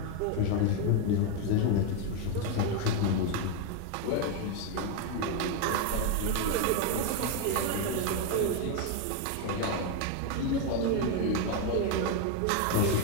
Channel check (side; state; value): both; different; correlation 0.01